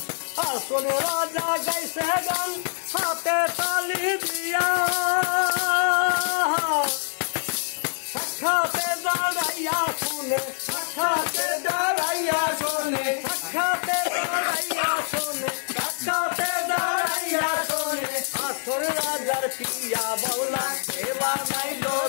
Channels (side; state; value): right; silent; 62 dB below the other